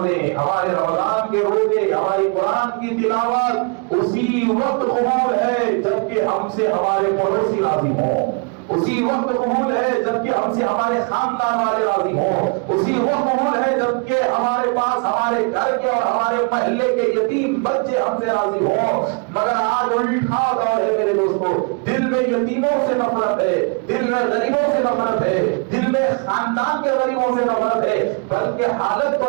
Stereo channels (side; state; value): left; quieter; 35.5 dB